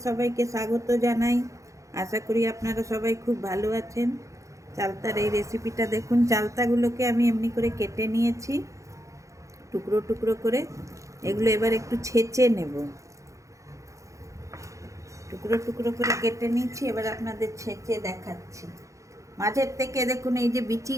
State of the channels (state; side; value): late; left; 0.15 ms